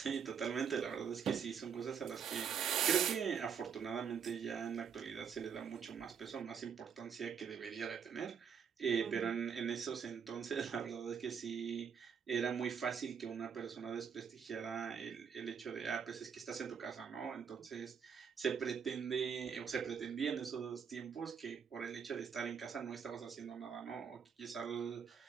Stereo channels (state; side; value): quieter; left; 7.0 dB